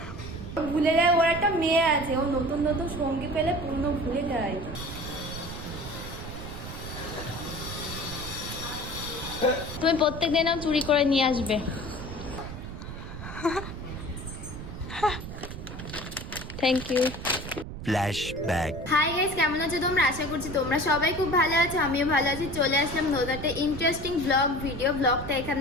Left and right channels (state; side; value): noise; right; rumble, 9 dB below the sound